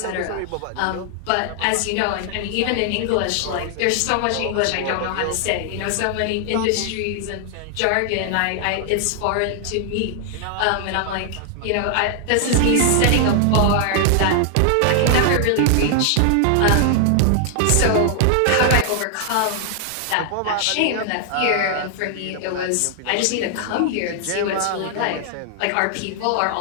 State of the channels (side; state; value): both; different; correlation 0.00